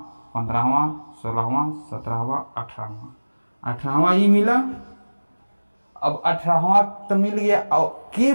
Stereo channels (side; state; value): both; inverted; correlation -1.00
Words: 15वां, 16वां, 17वां, 18वां ये मिला। अब 18वां तो मिल गया, और के